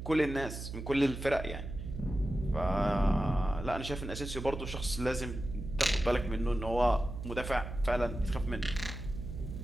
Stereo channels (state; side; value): noise; right; hum, 8 dB below the sound